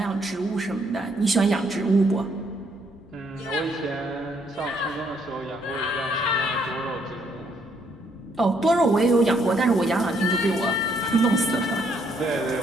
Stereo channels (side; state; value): both; normal; correlation 0.70